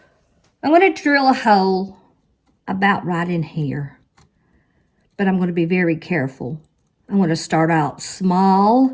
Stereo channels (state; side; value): identical; both; correlation 1.00